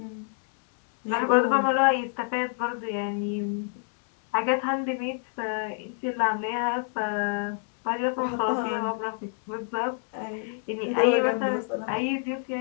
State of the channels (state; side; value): silent; right; 59 dB below the other